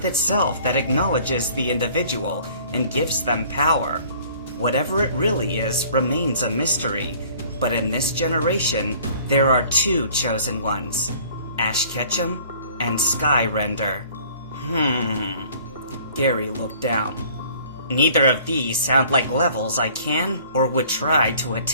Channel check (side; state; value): both; inverted; correlation -0.53